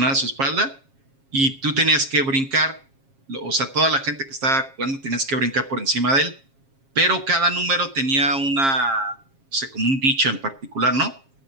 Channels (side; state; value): left; late; 7.4 ms